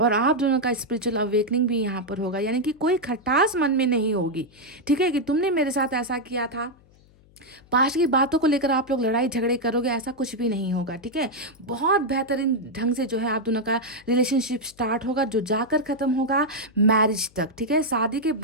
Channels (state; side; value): noise; left; hum, 28 dB below the sound